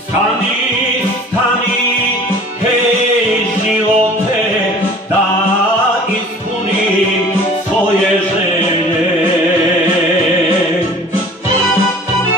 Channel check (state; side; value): normal; both; correlation 0.46